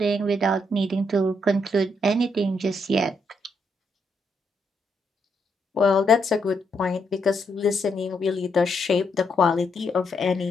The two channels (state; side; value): normal; both; correlation 0.77